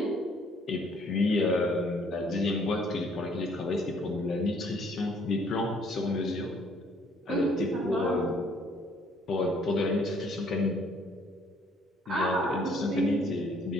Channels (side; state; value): both; normal; correlation 0.62